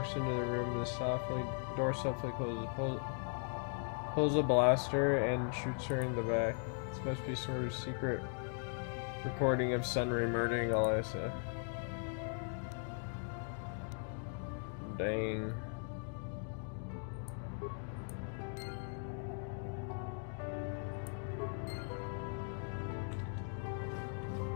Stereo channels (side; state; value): right; silent; 52 dB below the other